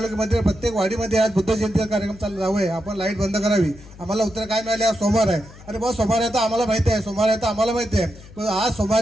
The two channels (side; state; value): left; noise; hum, 20 dB below the sound